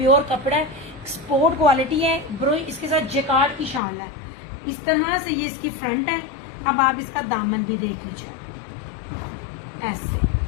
कपड़ा है, एक्सपोर्ट क्वालिटी है ब्रो। इसके साथ जेकार्ड की शाल है, इस तरह से ये इसकी फ्रंट है। अब आप इसका दामन भी देख लीजिए, ऐसे,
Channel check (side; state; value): right; drops out; at 3.8 s